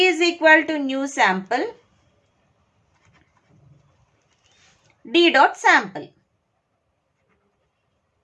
is equal to new sample d dot sample.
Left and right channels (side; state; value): both; identical; correlation 1.00